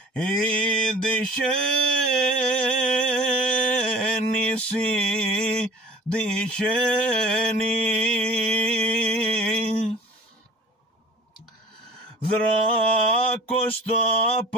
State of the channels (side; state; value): both; normal; correlation 0.46